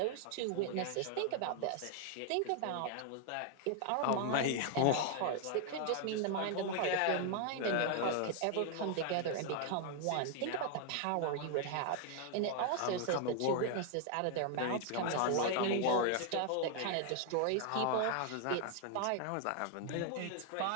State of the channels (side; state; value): both; different; correlation 0.00